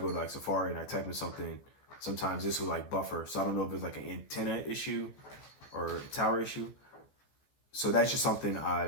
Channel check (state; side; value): late; right; 14 ms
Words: to Safari and I type in something, sometimes this will buffer. So I don't know if it's an antenna issue or a tower issue. So that's just something